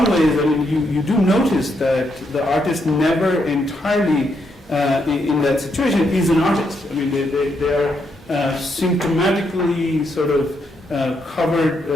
ways, you do notice that the artist never entirely, in that situation, is an artist. They are symptomatically sort of covered,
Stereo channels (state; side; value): normal; both; correlation 0.78